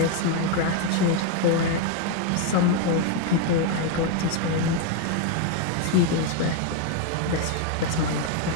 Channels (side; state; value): both; different; correlation 0.01